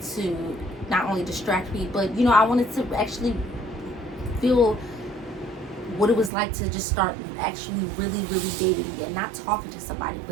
to not only distract me, but, I wanted to actually feel what it was like to just start actually really, really dating again. Not talking to somebody,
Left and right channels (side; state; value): left; drops out; at 6.3 s